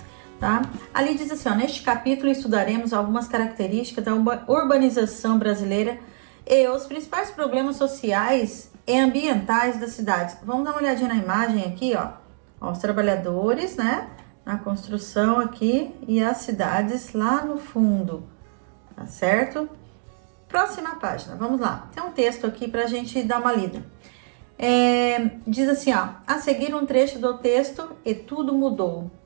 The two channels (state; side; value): silent; left; digital silence